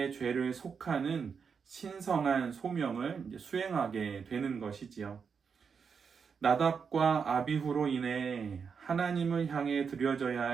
죄를 속하는 신성한 소명을 수행하게 되는 것이지요. 나답과 아비후로 인해 하나님을 향해 드려져야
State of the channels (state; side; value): quieter; left; 6.1 dB